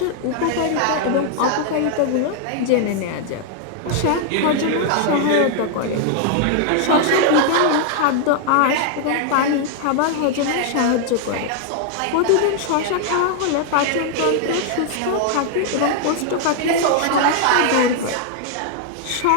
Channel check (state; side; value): different; both; correlation 0.00